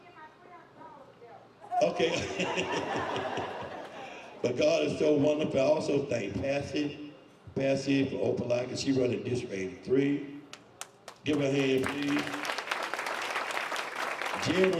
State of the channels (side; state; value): both; identical; correlation 1.00